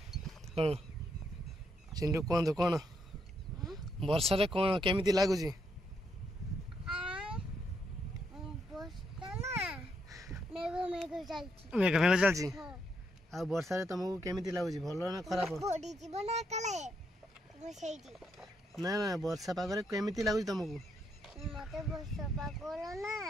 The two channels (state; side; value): normal; both; correlation 0.77